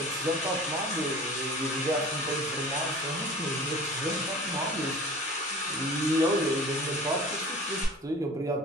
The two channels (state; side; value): normal; both; correlation 0.41